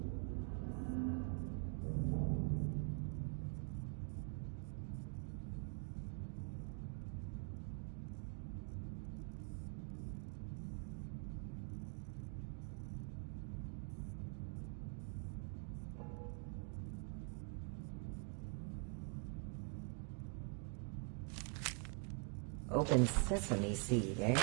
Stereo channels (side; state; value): left; quieter; 37.3 dB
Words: Open sesame seed, eh?